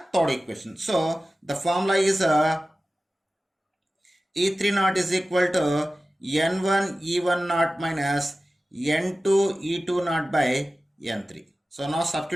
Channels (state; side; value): normal; both; correlation 0.95